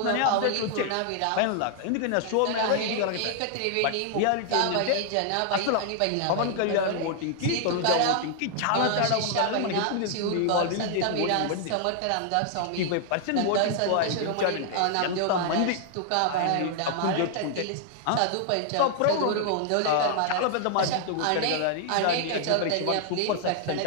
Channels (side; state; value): both; different; correlation 0.00